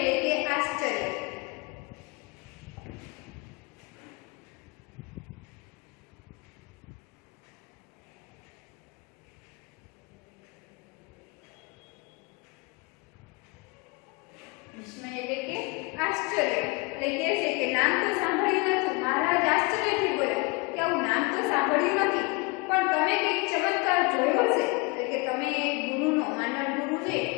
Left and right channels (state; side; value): quieter; right; 28.4 dB